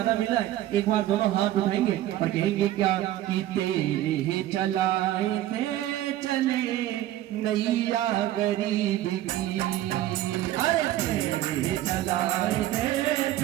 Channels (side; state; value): left; quieter; 13.8 dB